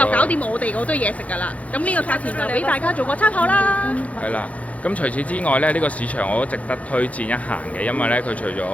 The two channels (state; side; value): late; right; 0.067 ms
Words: 搞掂我哋嗰堆嘢食㗎啦。咁呢個價錢就俾大家做個參考啦。係啦，咁除此之外咧，呢個市場我都值得推薦一行嘅，因為咧佢除咗